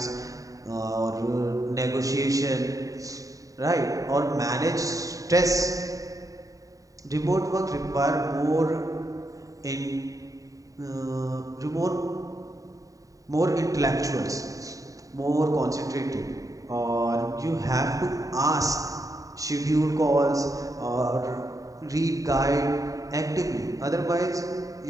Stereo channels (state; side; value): late; left; 0.16 ms